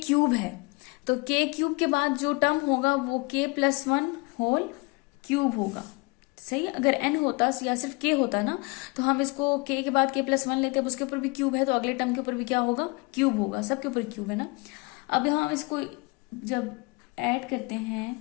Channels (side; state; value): right; quieter; 27.2 dB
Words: क्यूब है, तो k क्यूब के बाद जो टर्म होगा वो k प्लस 1 होल क्यूब होगा, सही। अगर n होता या सिर्फ k होता ना, तो हम इसको k के बाद k प्लस 1 लेते, अब उसके ऊपर भी क्यूब है तो अगले टर्म के ऊपर भी क्या होगा, क्यूब होगा, सबके ऊपर क्यूब है ना। अब यहाँ हम इसको जब ऐड करते